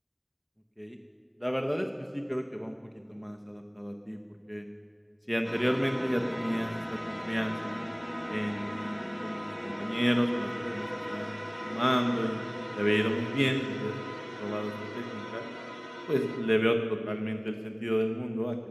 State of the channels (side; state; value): both; identical; correlation 1.00